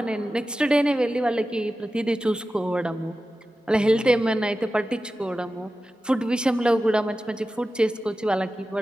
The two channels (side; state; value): both; normal; correlation 0.93